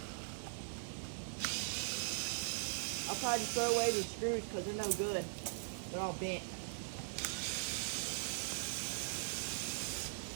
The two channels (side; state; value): left; silent; digital silence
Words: I'll probably just throw away these screws because they're no good. They're all bent.